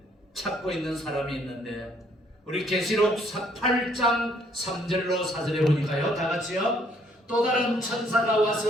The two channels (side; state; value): both; normal; correlation 0.65